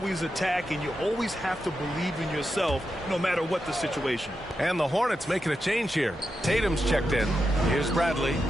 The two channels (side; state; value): both; normal; correlation 0.88